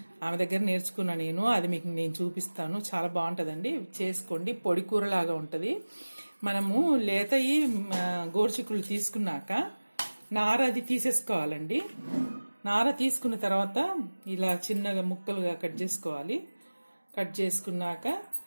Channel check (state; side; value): inverted; both; correlation -1.00